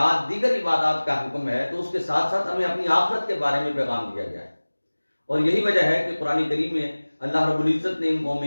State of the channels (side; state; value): both; inverted; correlation -1.00